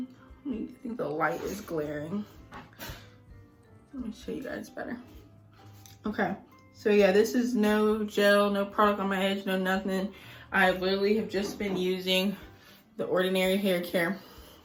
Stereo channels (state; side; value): identical; both; correlation 1.00